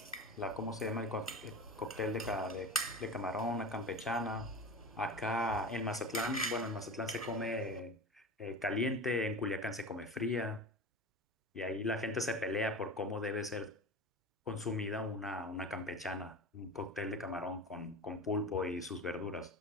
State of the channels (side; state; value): both; normal; correlation 0.30